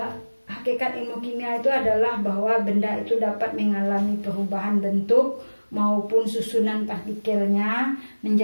Hakikat ilmu kimia itu adalah bahwa benda itu dapat mengalami perubahan bentuk maupun susunan partikelnya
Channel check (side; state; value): both; inverted; correlation -1.00